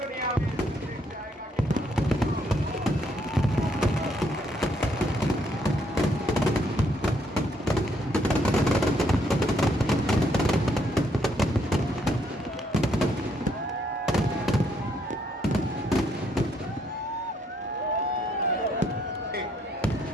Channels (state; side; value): normal; both; correlation 0.71